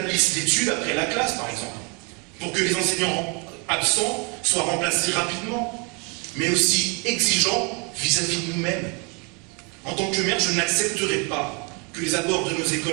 l'étude après la classe, par exemple, pour que les enseignants absents soient remplacés rapidement, mais aussi exigeants vis-à-vis de nous-mêmes. En tant que maire, je n'accepterai pas que les abords de nos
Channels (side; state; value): left; quieter; 32.1 dB